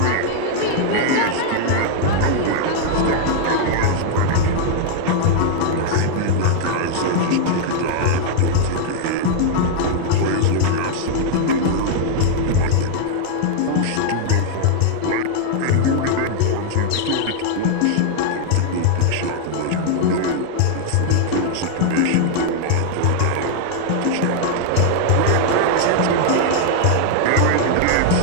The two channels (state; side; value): different; both; correlation 0.00